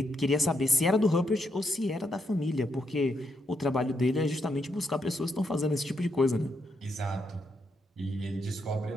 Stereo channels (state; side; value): normal; both; correlation 0.79